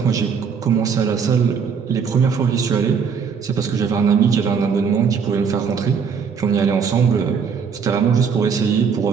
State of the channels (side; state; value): left; quieter; 6.3 dB